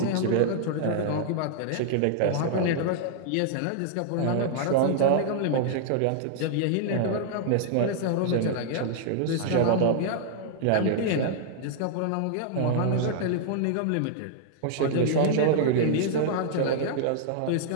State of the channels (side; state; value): both; different; correlation -0.01